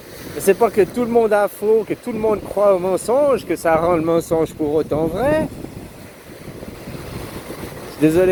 C'est pas que tout le monde a faux, que tout le monde croit au mensonge, que ça rend le mensonge pour autant vrai. Je suis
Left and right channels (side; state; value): both; identical; correlation 1.00